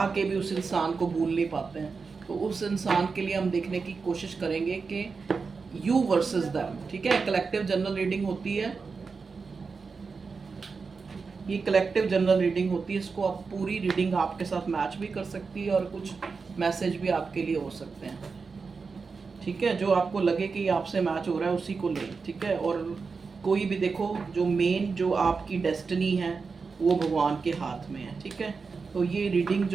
के भी उस इंसान को भूल नहीं पाते हैं, तो उस इंसान के लिए हम देखने की कोशिश करेंगे कि यू वर्सेस दैम। ठीक है, कलेक्टिव जनरल रीडिंग होती है। ये कलेक्टिव जनरल रीडिंग होती है। इसको आप पूरी रीडिंग आपके साथ मैच भी कर सकती है और कुछ मैसेज भी आपके लिए हो सकते हैं। ठीक है, जो आपको लगे कि आपसे मैच हो रहा है उसी को लें। ठीक है, और कोई भी देखो, जो मेन जो आपकी डेस्टिनी है वो भगवान के हाथ में है। ठीक है, तो ये रीडिंग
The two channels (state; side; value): quieter; left; 4.8 dB